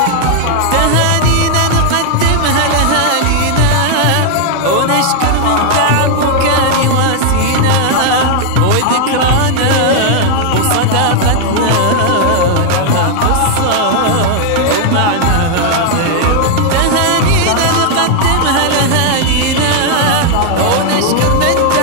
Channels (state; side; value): different; both; correlation 0.00